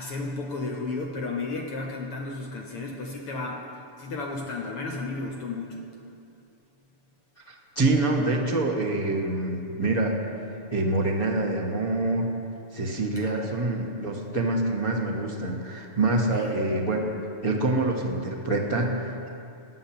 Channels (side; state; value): right; late; 6.9 ms